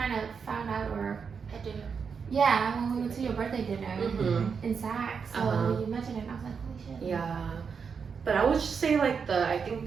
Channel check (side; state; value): left; quieter; 6.0 dB